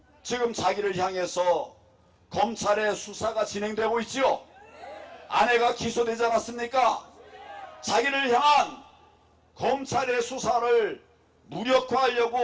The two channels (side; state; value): both; identical; correlation 1.00